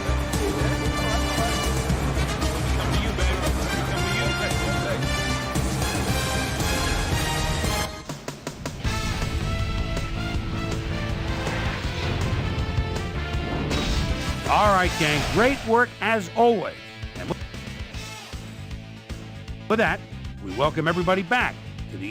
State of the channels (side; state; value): both; identical; correlation 1.00